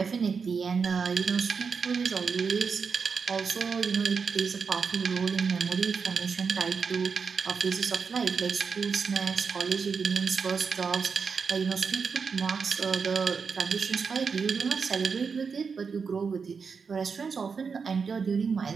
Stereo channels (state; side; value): quieter; left; 5.6 dB